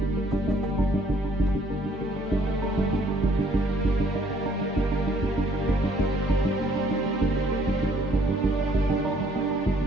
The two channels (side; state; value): both; normal; correlation 0.63